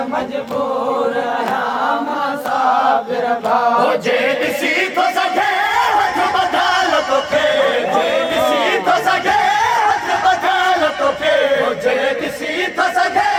मजबूर आया मासाबिर भाग जेद सी तो सके हथ बदल तो के जेद सी तो सके हथ बदल तो के जेद सी तो सके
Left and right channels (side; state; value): both; identical; correlation 1.00